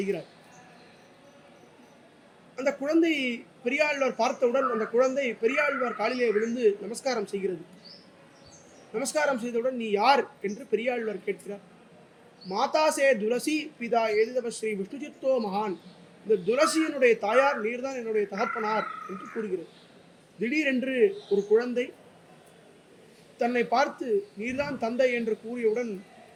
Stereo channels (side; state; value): both; identical; correlation 1.00